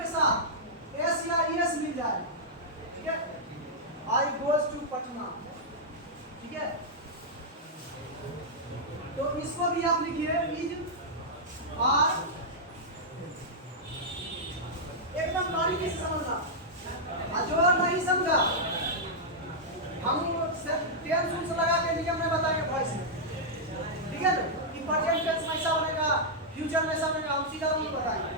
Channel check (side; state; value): both; normal; correlation -0.08